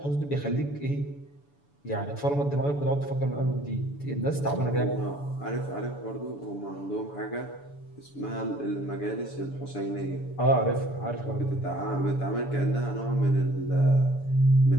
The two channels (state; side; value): late; right; 7.0 ms